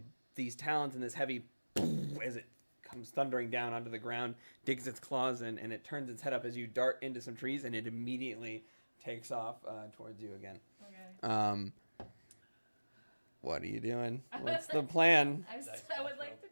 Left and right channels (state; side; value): inverted; both; correlation -1.00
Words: these talons and this heavy, as it comes thundering down onto the ground, digs its claws in, and it turns its head up as you dart into some trees, and it immediately takes off towards you again. Okay. What are you doing? What's the plan? I would like to